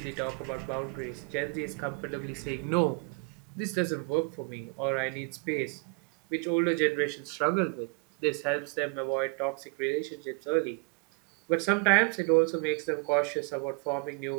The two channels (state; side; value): quieter; left; 31.0 dB